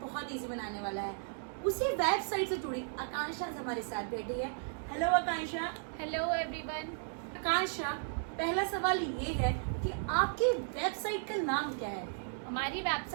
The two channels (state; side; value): silent; left; digital silence